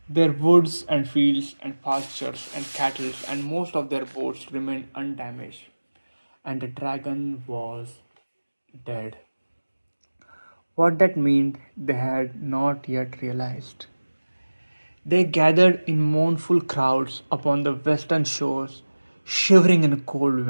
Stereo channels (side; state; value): both; inverted; correlation -1.00